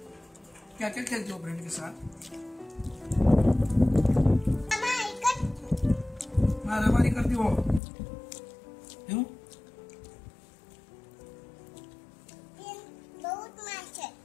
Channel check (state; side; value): drops out; right; at 7.8 s